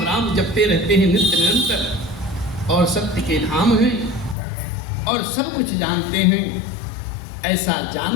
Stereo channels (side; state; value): right; drops out; at 4.4 s